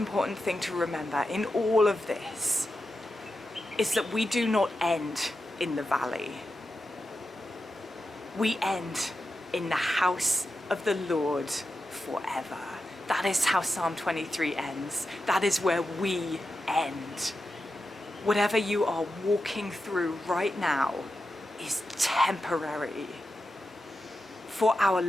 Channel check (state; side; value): normal; both; correlation 0.90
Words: thing to remember in all of this is that we do not end in the valley. We end in the house of the Lord forever. That is how Psalm 23 ends. That is where we end. Whatever you are walking through right now is temporary. For our